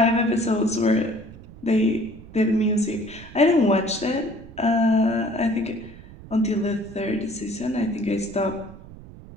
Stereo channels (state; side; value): noise; right; rumble, 18 dB below the sound